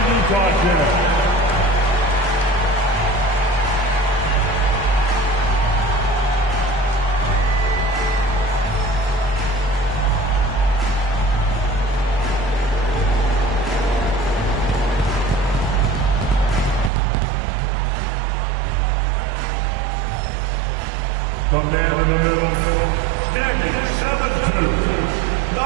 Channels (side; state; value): left; drops out; at 16.9 s